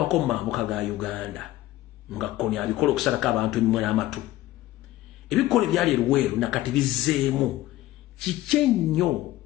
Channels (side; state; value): right; quieter; 15.7 dB